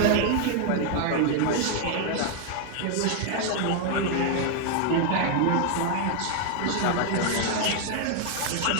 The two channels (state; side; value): different; both; correlation 0.00